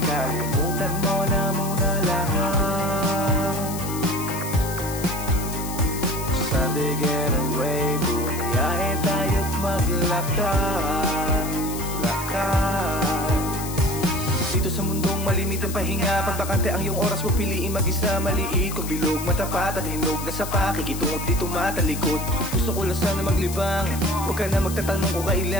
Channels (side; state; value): left; noise; hiss, 10 dB below the sound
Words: kalimutan mo na muna lahat. Sunday getaway, bumiyahe tayo't maglakad. Lakad. Dito sa mundong malimit ang pahinga, pagbakante ang iyong oras mo piliin mag-isa. Maliit kung bilog, matapat at hinog na sapa, kikitungot dito matalikod. Gusto ko lang sana maglibang, huwag ka na magtatanong kung